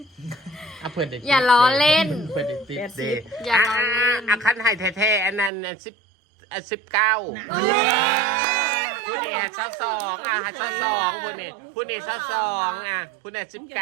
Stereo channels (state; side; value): drops out; left; at 5.5 s